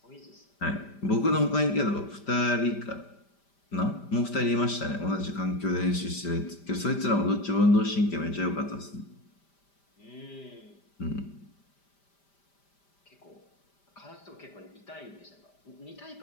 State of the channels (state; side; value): late; right; 5.1 ms